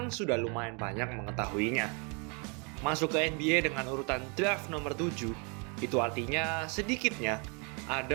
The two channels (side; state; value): left; quieter; 33.9 dB